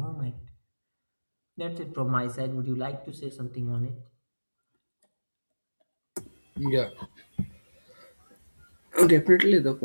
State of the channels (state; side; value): inverted; both; correlation -1.00